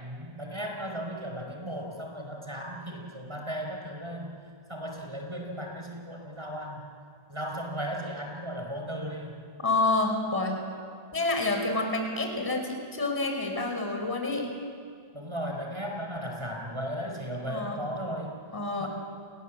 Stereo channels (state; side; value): late; left; 1.0 ms